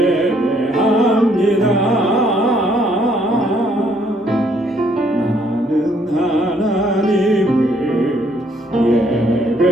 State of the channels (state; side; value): normal; both; correlation 0.67